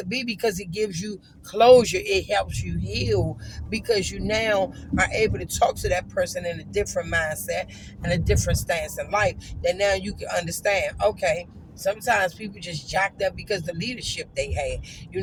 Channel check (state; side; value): identical; both; correlation 1.00